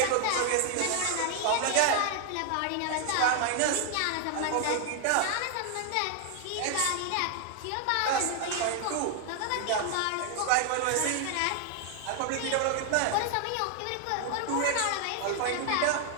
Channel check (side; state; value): both; different; correlation 0.00